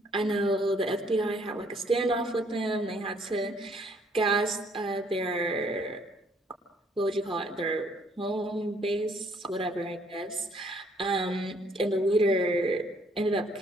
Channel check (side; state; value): both; normal; correlation 0.65